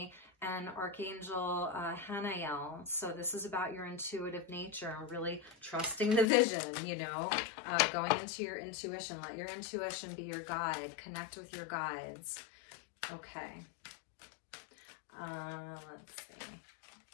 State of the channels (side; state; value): right; drops out; at 6.2 s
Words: and Archangel Hanael. So this is about your intuitive nature, really trusting the vision, you know, going into your intuition. Let your intuition be your guide. Connect with your guides. Okay. Let's